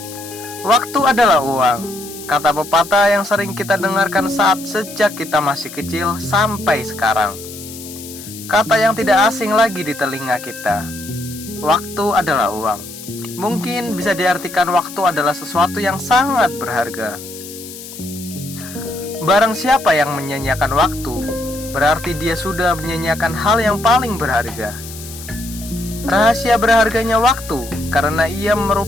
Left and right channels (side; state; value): left; noise; hiss, 14 dB below the sound